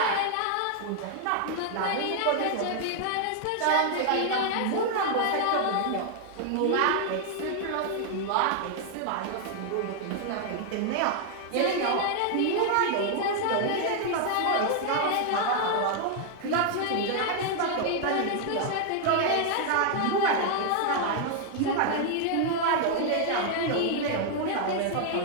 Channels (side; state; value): both; different; correlation 0.00